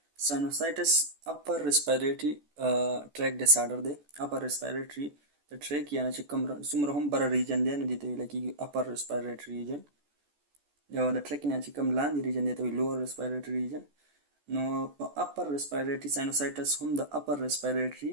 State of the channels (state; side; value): late; left; 14 ms